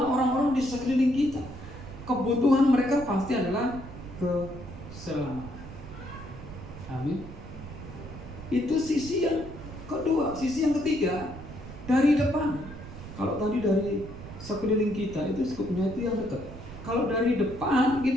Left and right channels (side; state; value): right; noise; rumble, 13 dB below the sound